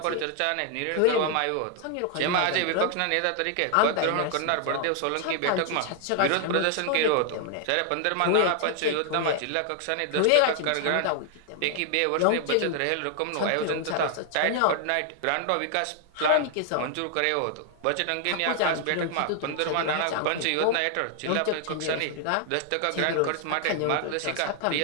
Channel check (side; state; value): both; different; correlation 0.00